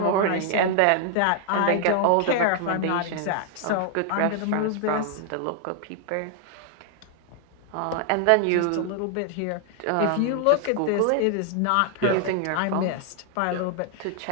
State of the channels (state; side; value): different; both; correlation 0.00